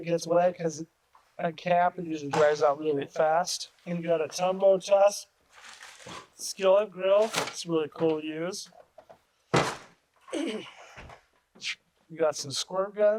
gets wet because at camp it usually dries out really fast. And you got a tumbo tusk skillet grill. It's really cool to use. You got some squirt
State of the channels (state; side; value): identical; both; correlation 1.00